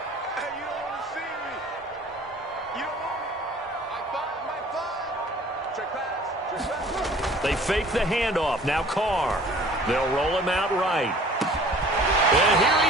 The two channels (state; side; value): normal; both; correlation 0.50